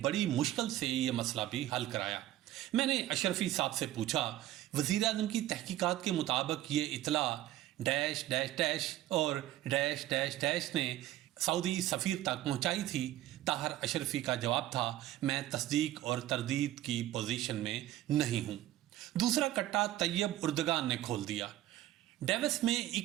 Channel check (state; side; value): quieter; left; 14.2 dB